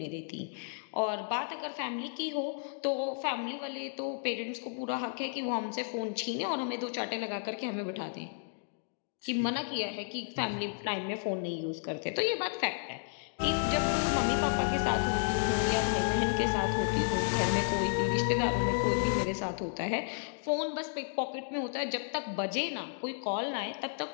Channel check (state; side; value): silent; right; digital silence